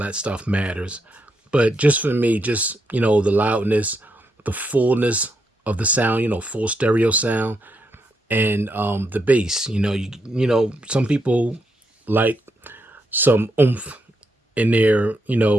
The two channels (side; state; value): both; normal; correlation 0.80